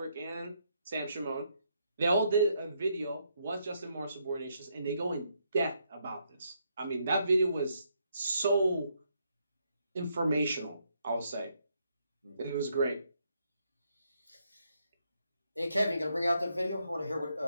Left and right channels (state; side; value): inverted; both; correlation -0.76